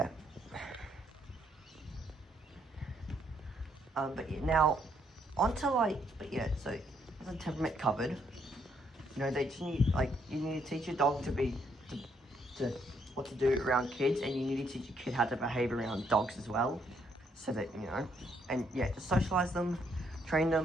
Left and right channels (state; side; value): normal; both; correlation 0.72